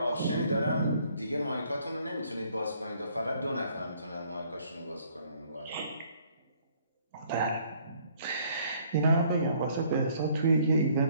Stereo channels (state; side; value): inverted; both; correlation -0.62